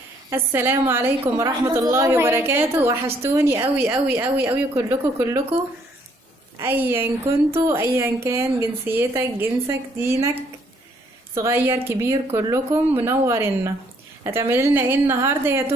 السلام عليكم ورحمة الله وبركاته. وحشتوني قوي قوي قوي قوي كلكم ايا كنتوا، ايا كان جنسيتك، جنسك، دينك، صغير كبير، كلكم منورنا. هتعملي لنا ايه النهارده يا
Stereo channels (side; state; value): both; normal; correlation 0.66